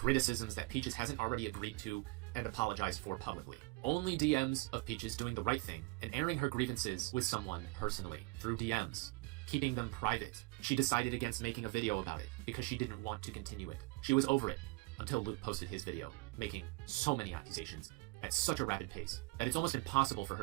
that Peaches hasn't already agreed to and apologized for publicly. Only DMs of Peaches doing the right thing and airing her grievances with someone personally, through DMs, keeping them private. She decided against making a video about it because she didn't want to continue it. She was over it until Luke posted his video, making so many accusations at such a rapid pace that it's almost impossible for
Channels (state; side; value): quieter; left; 24.9 dB